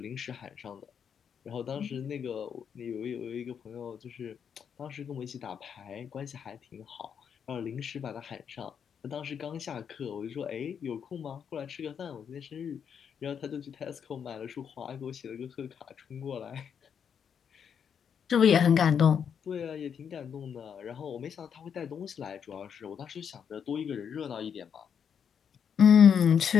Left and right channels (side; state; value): right; quieter; 7.6 dB